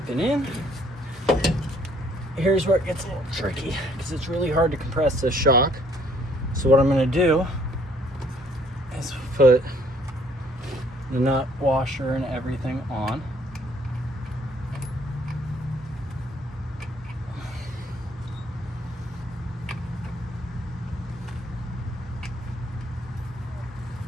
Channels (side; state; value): both; normal; correlation 0.63